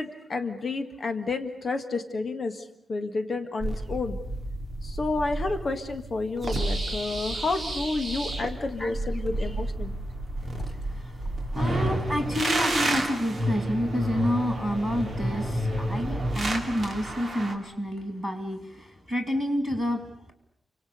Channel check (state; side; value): normal; both; correlation 0.88